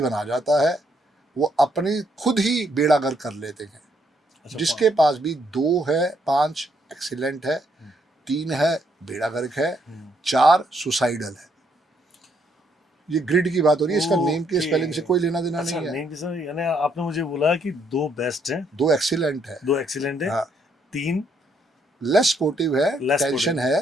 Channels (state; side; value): normal; both; correlation 0.72